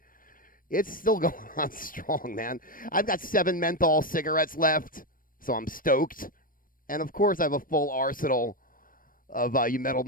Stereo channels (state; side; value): late; right; 0.41 ms